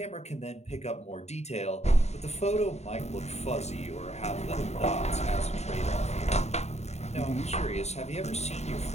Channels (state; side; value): late; right; 0.32 ms